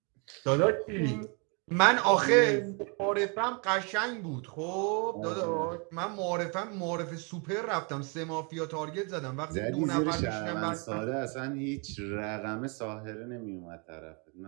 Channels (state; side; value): quieter; left; 34.2 dB